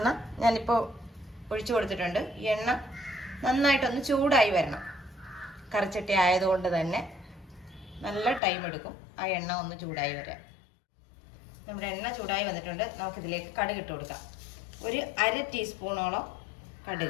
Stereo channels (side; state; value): right; drops out; at 8.4 s